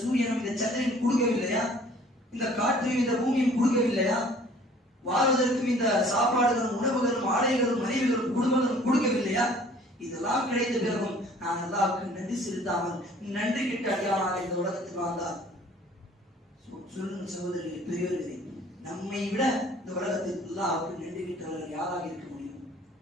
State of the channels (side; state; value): both; normal; correlation 0.53